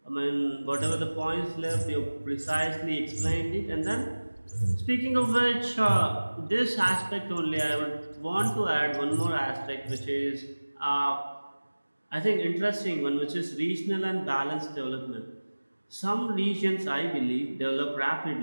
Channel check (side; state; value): both; inverted; correlation -1.00